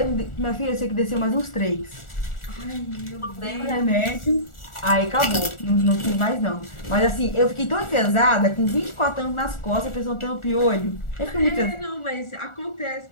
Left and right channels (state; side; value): late; right; 1.4 ms